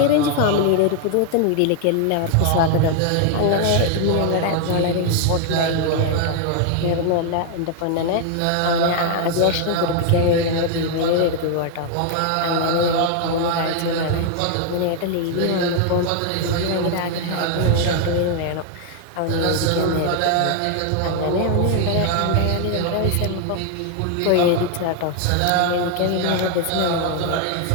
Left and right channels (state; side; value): different; both; correlation 0.00